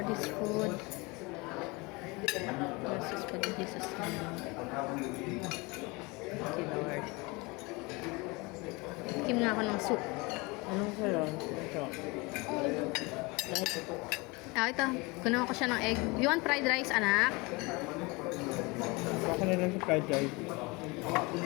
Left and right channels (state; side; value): quieter; right; 25.8 dB